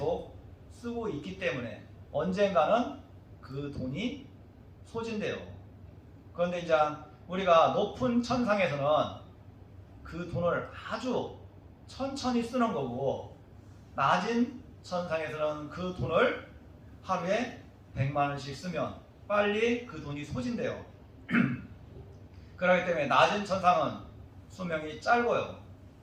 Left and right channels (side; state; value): both; identical; correlation 1.00